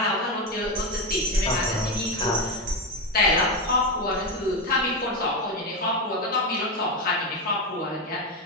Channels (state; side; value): normal; both; correlation 0.12